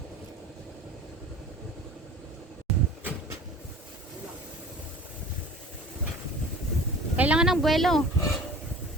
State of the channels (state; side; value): normal; both; correlation 0.42